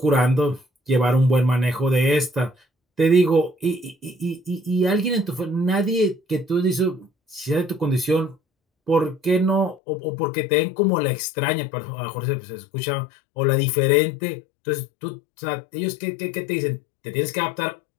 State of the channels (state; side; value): drops out; right; at 9.8 s